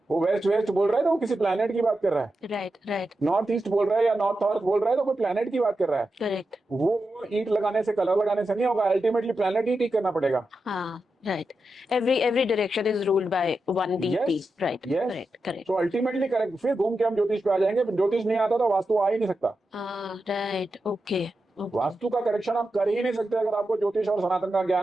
वो वेस्ट बोल रहा है तो वो किसी प्लैनेट की बात कर रहा है. Right, right. नॉर्थ ईस्ट बोल रहा है या नॉर्थ नॉर्थ बोल रहा है तो कोई प्लैनेट की बात कर रहा है. करेक्ट. वो ईंट लगाने से, कलर लगाने से नहीं होगा. अल्टीमेटली प्लैनेट ही ठीक करना पड़ेगा. हाँ, right. Every direction is ruled by one deity. Right, correct, correct. तो अल्टीमेटली करेक्ट. फिर घूम के हम ज्योतिष पे आ जाएंगे. ज्योतिष नहीं आता तो वास्तु आ ही नहीं सकता. राइट. ओके. वास्तु का करेक्शन आप कर ही नहीं सकते अगर आपको ज्योतिष और सनातन का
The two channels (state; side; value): normal; both; correlation 0.89